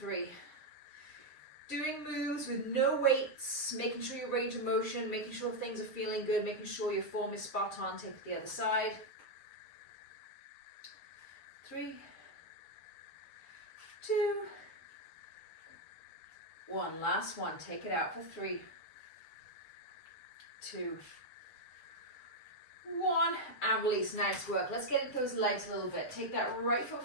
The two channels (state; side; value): late; right; 7.5 ms